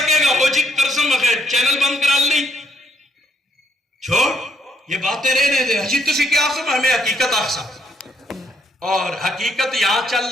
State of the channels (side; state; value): both; normal; correlation 0.72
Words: گا، وہ جی کرسم بخیر چینل بند کرا لی، چھوڑ یہ باتیں رہنے دے، حجی تسی کیا سمجھ ہمیں حقیقت آخسا، اور حقیقت یہاں چل